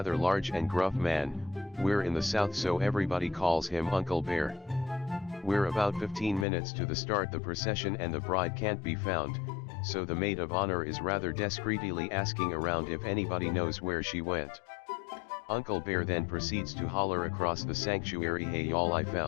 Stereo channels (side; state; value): right; drops out; at 6.5 s